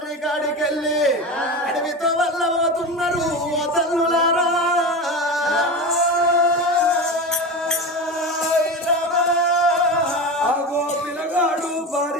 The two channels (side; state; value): both; normal; correlation 0.24